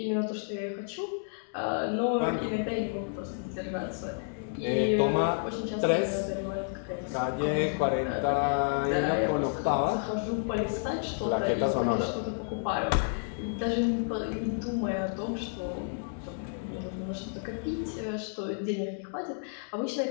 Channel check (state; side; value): silent; right; digital silence